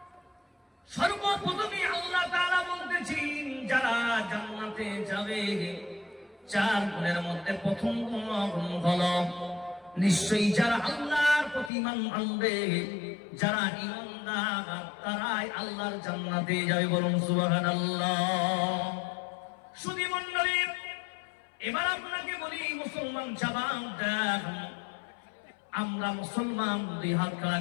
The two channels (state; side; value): drops out; right; at 11.7 s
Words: সর্বপ্রথমে আল্লাহ তাআলা বলতেছেন যারা জান্নাতে যাবে, চার গুণের মধ্যে প্রথম গুণ হলো নিশ্চয়ই যারা আল্লাহর প্রতি ঈমান আনবে, যারা ঈমানদার, তারাই আল্লাহর জান্নাতে যাবে। বলুন সুবহানাল্লাহ। শুধু মণ্ডলী, এবার আপনাকে বলি মুসলমান জবাব দেন। আমরা মুসলমান, দুই হাত খাড়া